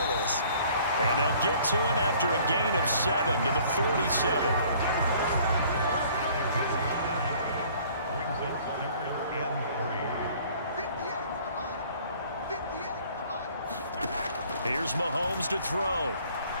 is. And they'll get to him after a gain of 7 to the 47. Here's Mahomes to throw.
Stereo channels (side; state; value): both; inverted; correlation -0.55